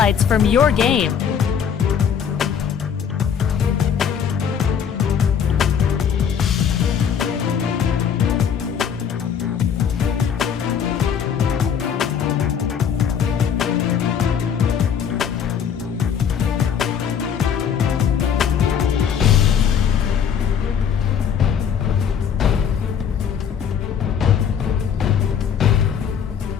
from your game.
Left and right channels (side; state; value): right; quieter; 7.7 dB